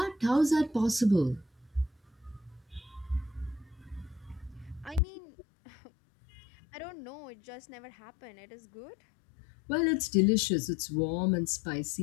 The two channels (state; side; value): drops out; right; at 5.0 s